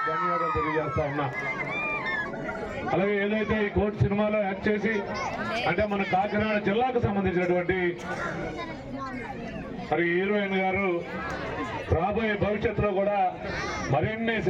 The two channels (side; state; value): both; identical; correlation 1.00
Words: ధన్యవాదాలు తెలియజేస్తా ఉన్నా. అలాగే ఏదైతే ఈ కోర్టు సినిమాలో యాక్ట్ చేసి అంటే మన కాకినాడ జిల్లాకు సంబంధించినటువంటి మరి హీరోయిన్ గారు రాబోయే భవిష్యత్తులో కూడా మరిన్ని